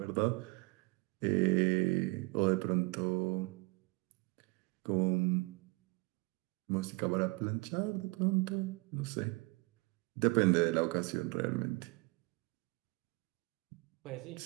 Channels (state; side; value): quieter; left; 26.8 dB